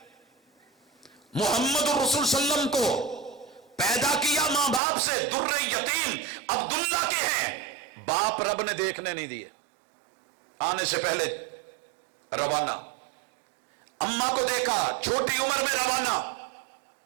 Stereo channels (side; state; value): left; drops out; at 4.8 s